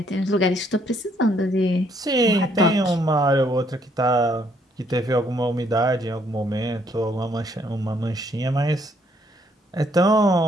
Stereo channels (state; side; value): normal; both; correlation 0.68